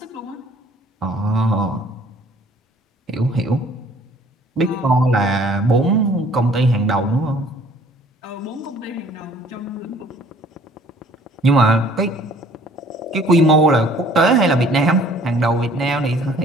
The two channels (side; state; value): both; normal; correlation 0.55